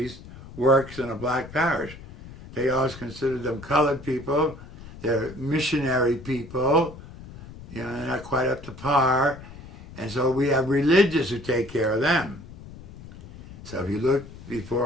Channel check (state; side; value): noise; left; rumble, 16 dB below the sound